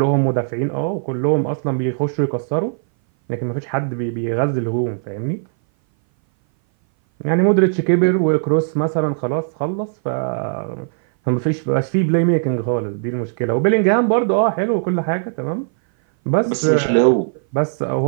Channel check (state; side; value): silent; left; 59 dB below the other